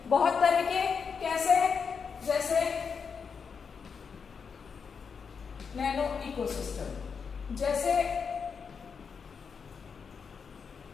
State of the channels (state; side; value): quieter; right; 6.0 dB